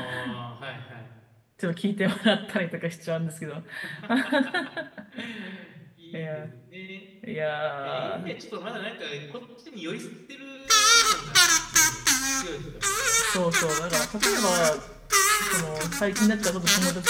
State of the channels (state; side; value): identical; both; correlation 1.00